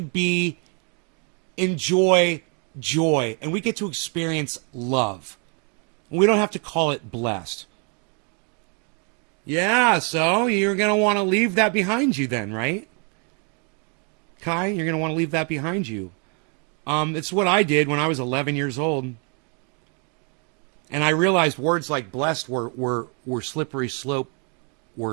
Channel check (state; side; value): quieter; left; 37.3 dB